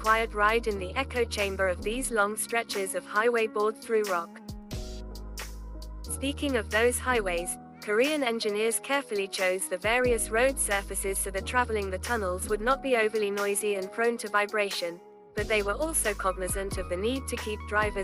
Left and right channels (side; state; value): both; identical; correlation 1.00